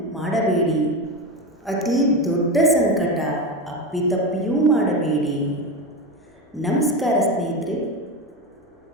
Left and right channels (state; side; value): normal; both; correlation 0.19